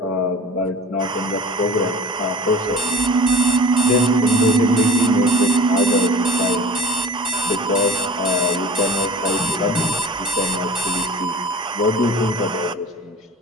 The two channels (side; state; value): both; normal; correlation 0.41